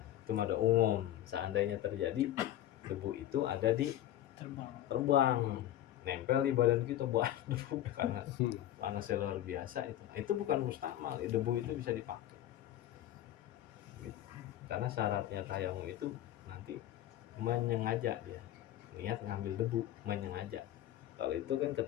itu ada umum. Seandainya terjadi debu itu ada di terbang, nempel di badan kita buat debu karena panasnya luar biasa, itu bukan mustakmal. Debu itu bisa dipakai. Gitu. Karena syaratnya tayamum itu nanti menyengaja, dia niat ngambil debu menyengaja. Kalau itu kan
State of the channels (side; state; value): right; quieter; 12.8 dB